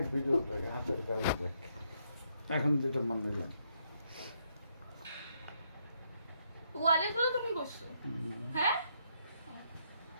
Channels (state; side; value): inverted; both; correlation -0.76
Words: ভিডিওটাকে হাতের কাজ দেখ, এখন যেটা মন দিলাম ওয়ালেগুলো তুমি করছো। হ্যাঁ